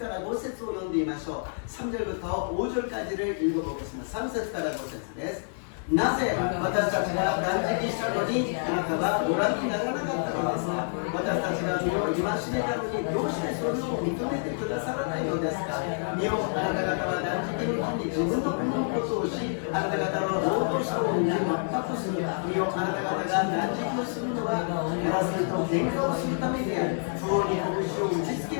ら5節を読んでみましょう。 3절부터 5절까지를 읽어보겠습니다. 3節から5節です。 なぜ私たちが断食したのにあなたはご覧にならなかったのですか。私たちが身を戒めたのにどうしてそれを認めてくださらないのですか。身をあなた方は断食の日に自分の国のことをし、あなた方の労働者を全くする。身をあなた方が断食をするのは争いと喧嘩をするためであり、不法に拳を打ちつ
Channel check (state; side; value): silent; right; digital silence